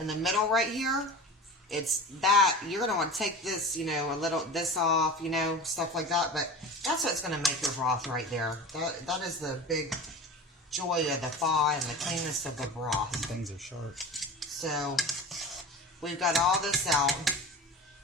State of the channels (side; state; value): both; normal; correlation 0.33